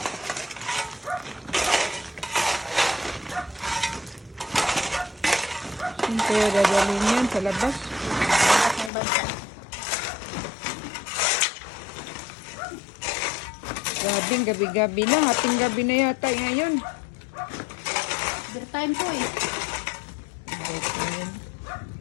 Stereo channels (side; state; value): right; drops out; at 8.9 s